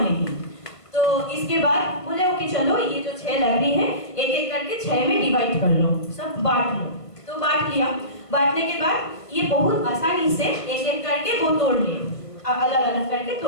तो इसके बाद बोले कि चलो ये जो 6 लकड़ी है एक एक करके 6 में डिवाइड कर लो, सब बांट लो। तो बांट लिया, बांटने के बाद ये बहुत आसानी से एक एक करके वो तोड़ लिए, अलग अलग करके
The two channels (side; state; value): right; late; 1.5 ms